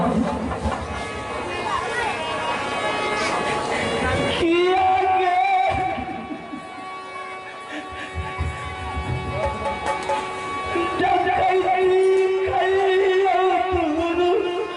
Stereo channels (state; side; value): identical; both; correlation 1.00